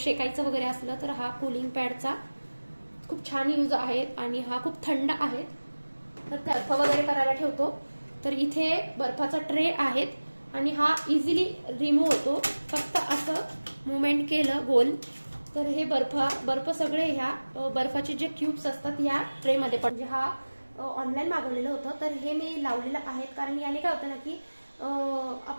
वगैरे असलं तर हा कूलिंग पॅडचा खूप छान यूज आहे आणि हा खूप थंड आहे। तर बर्फ वगैरे करायला ठेवतो, तर इथे बर्फाचा ट्रे आहेत आणि हा इझिली रिमूव्ह होतो। फक्त असं मुवमेंट केलं गोल तर हे बर्फ सगळे ह्या बर्फाचे जे क्यूब्स असतात या ट्रे मध्ये पण, म्हणजे हा ऑनलाईन मागवलेलं होतं, तर हे मी लावलेलं आहे। कारण याने काय होतं ना की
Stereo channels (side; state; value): both; inverted; correlation -1.00